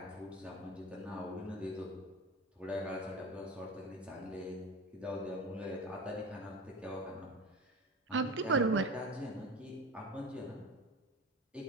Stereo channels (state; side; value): normal; both; correlation 0.31